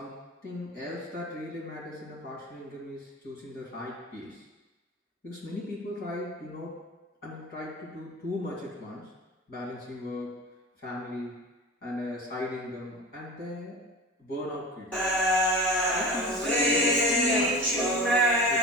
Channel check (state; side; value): normal; both; correlation 0.33